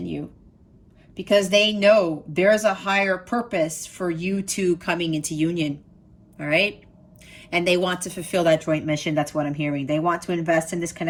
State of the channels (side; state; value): both; identical; correlation 1.00